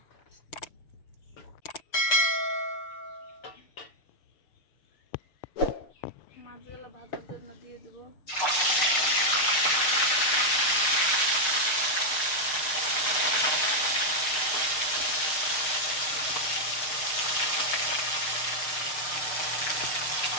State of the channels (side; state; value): right; late; 6.5 ms